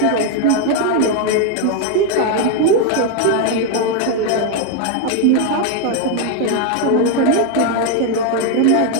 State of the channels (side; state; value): both; different; correlation 0.01